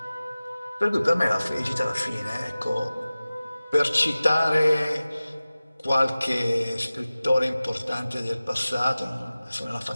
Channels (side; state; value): both; inverted; correlation -0.97